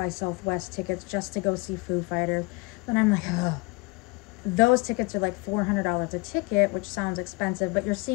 Southwest tickets just to go see Foo Fighters. But I'm like, ugh. Those tickets are like $400 a ticket, which sounds expensive, but you're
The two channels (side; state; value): right; quieter; 26.3 dB